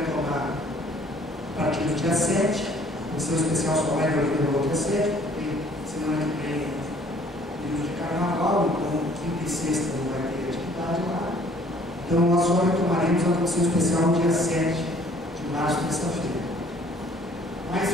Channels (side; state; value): both; normal; correlation 0.58